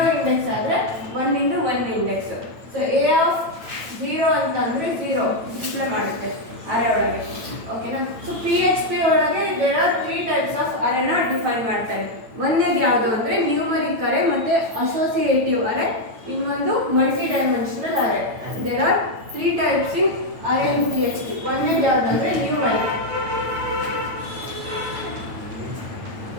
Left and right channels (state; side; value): late; left; 9.0 ms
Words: ಇಂಡೆಕ್ಸ್ ಆದ್ರೆ 1 into 1 index. So a of 0 ಅಂತಂದ್ರೆ 0 ಡಿಸ್ಪ್ಲೇ ಮಾಡುತ್ತೆ ಅರೇ ಒಳಗೆ. ಓಕೆನಾ? ಸೊ PHP ಒಳಗೆ ದೇರ್ ಆರ್ 3 ಟೈಪ್ಸ್ ಆಫ್ ಅರೇನ ಡಿಫೈನ್ ಮಾಡ್ತಾರೆ. ಒಂದೇದು ಯಾವುದು ಅಂದ್ರೆ ನ್ಯೂಮರಿಕ್ ಅರೇ ಮತ್ತೆ ಅಸೋಸಿಯೇಟಿವ್ ಅರೇ, ಇನ್ನೊಂದು multidimensional array. There are 3 types in array in PHP. ಒಂದೇದು ಯಾವುದು ಅಂದ್ರೆ ನ್ಯೂಮರಿಕ್.